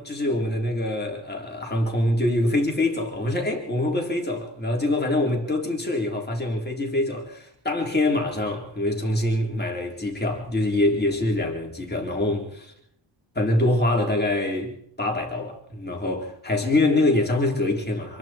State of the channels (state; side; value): normal; both; correlation 0.51